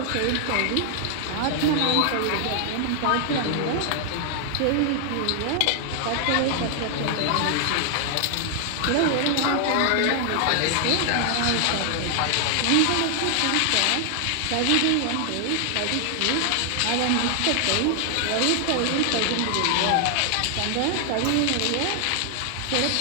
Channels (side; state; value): both; different; correlation 0.00